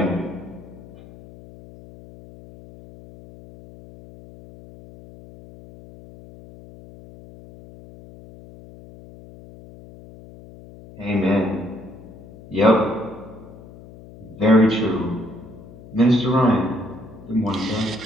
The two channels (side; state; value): left; noise; hum, 19 dB below the sound